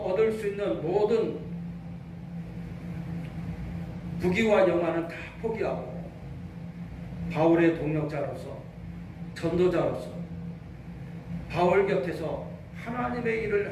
수 있는 모든 부귀와 영화는 다 포기하고 바울의 동역자로서, 전도자로서 바울 곁에서 하나님의 일을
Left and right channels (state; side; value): identical; both; correlation 1.00